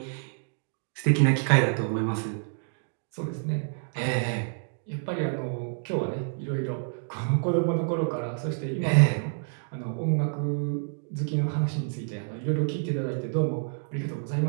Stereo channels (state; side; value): silent; left; digital silence